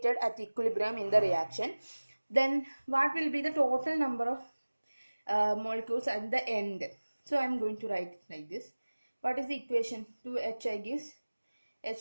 at equilibrium in the reaction. Then what will be the total number of molecules at the end? So I am going to write it like this. What is the equation? 2HI gives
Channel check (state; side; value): inverted; both; correlation -1.00